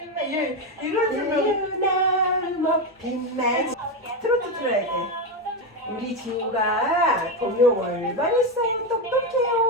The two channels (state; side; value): normal; both; correlation 0.11